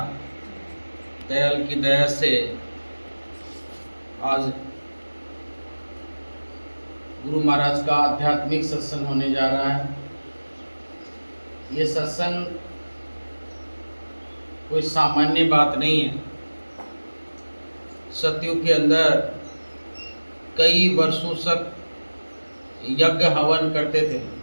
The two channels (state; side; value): inverted; both; correlation -1.00